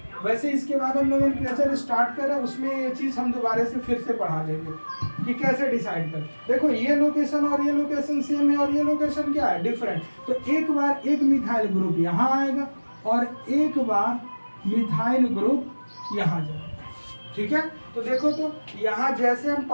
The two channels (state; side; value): inverted; both; correlation -1.00